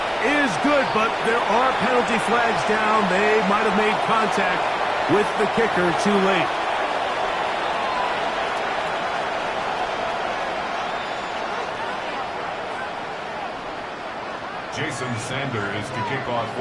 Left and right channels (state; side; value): identical; both; correlation 1.00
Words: is good, but there are penalty flags down. They might have made contact with the kicker too late. Jason Sanders to kick off